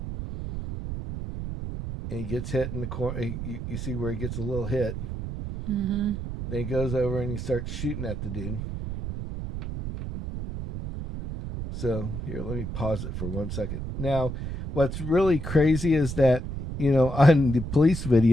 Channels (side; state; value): right; noise; rumble, 6 dB below the sound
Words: and he gets hit in the corner. You see where he gets a little hit. Then he goes over and he starts shooting at the dude. So here, let me pause it for 1 second. Now, what's really crazy is that, on the police